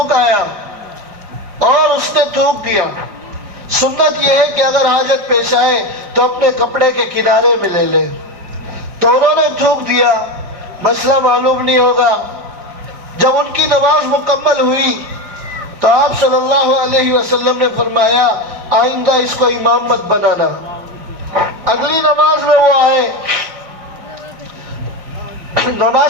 آیا اور اس نے تھوک دیا۔ سنت یہ ہے کہ اگر حاجت پیش آئے تو اپنے کپڑے کے کنارے میں لے لے، تو انہوں نے تھوک دیا، مسئلہ معلوم نہیں ہوگا۔ جب ان کی نماز مکمل ہوئی تو آپ صلی اللہ علیہ وسلم نے فرمایا آئندہ اس کو امام مت بنانا۔ اگلی نماز میں وہ آئے،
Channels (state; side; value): late; left; 5.0 ms